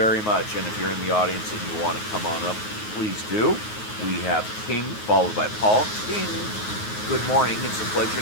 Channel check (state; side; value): late; right; 9.4 ms